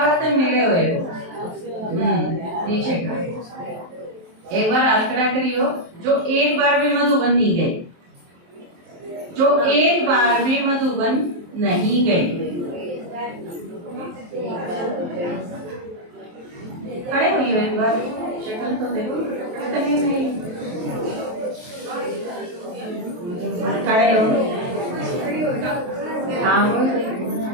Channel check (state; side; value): late; left; 23 ms